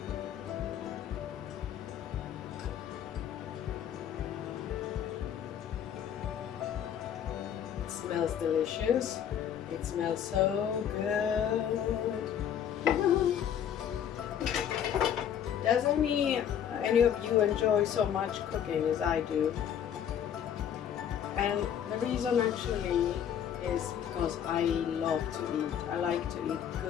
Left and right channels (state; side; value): quieter; right; 9.3 dB